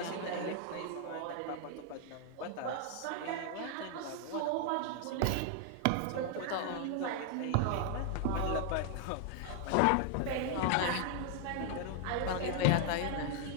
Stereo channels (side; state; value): both; different; correlation 0.00